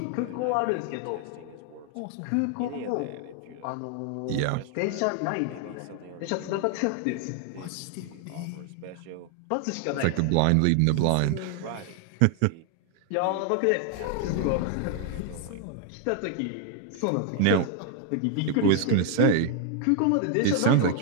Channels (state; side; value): different; both; correlation 0.00